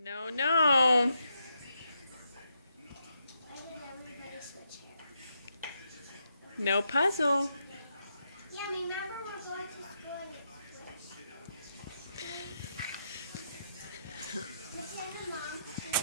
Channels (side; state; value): both; inverted; correlation -0.81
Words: no. No puzzle. Yeah, remember we're going to school and